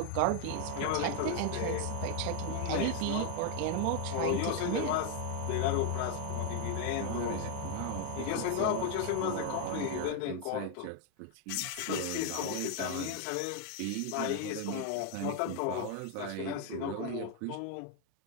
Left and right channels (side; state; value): both; different; correlation 0.01